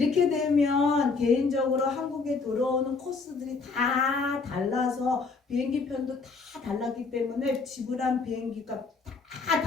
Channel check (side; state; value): right; quieter; 4.4 dB